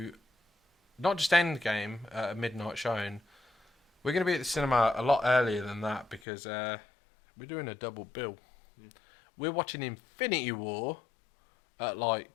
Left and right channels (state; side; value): drops out; right; at 6.2 s